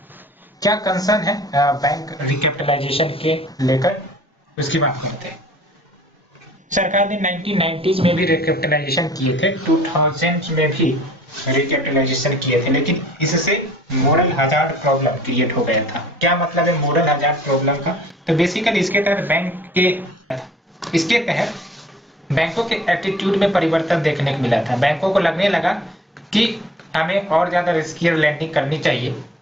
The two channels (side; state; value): both; normal; correlation 0.51